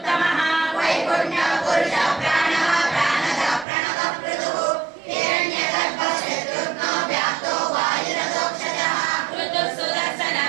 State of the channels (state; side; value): drops out; left; at 3.7 s